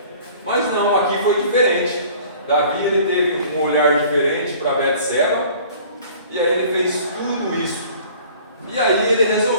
Mas não, aqui foi diferente. Davi ele teve um olhar diferente para Betseba, e aí ele fez tudo isso. E aí ele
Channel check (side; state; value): both; inverted; correlation -0.49